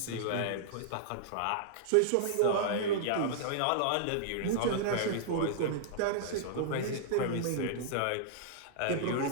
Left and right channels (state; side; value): different; both; correlation -0.02